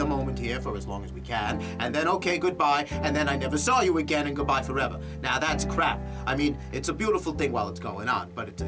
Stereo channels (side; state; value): both; identical; correlation 1.00